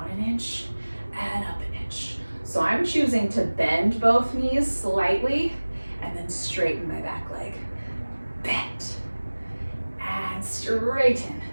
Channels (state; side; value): inverted; both; correlation -1.00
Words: an inch and up an inch. So I'm choosing to bend both knees slightly and then straighten my back leg. Bend and straighten.